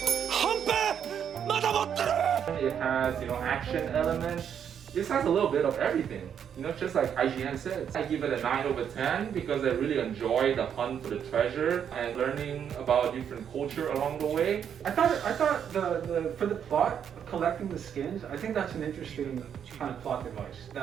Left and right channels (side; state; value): left; quieter; 8.4 dB